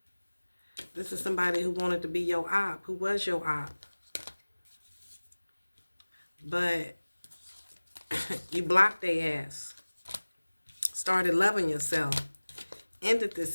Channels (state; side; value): inverted; both; correlation -1.00